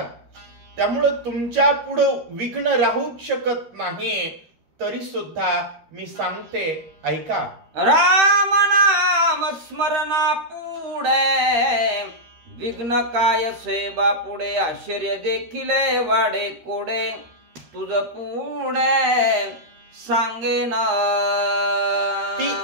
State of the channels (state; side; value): late; left; 13 ms